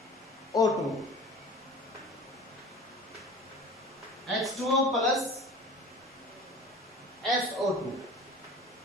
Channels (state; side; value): normal; both; correlation 0.40